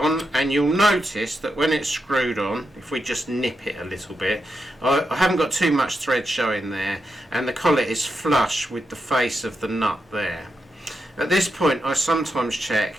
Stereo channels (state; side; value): normal; both; correlation 0.86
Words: and you'll notice that when it's screwed on, if we just nip it a little bit, I haven't got too much thread showing there, and the collet is flush with the face of the nut there. At this point I sometimes check,